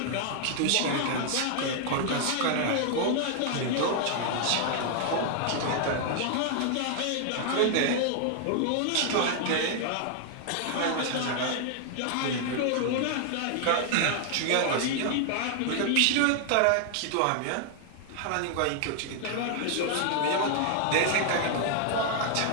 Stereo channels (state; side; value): different; both; correlation 0.00